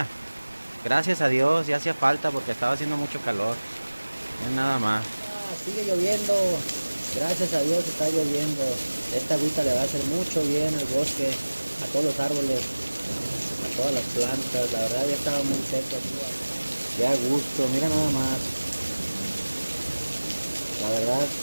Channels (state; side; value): inverted; both; correlation -1.00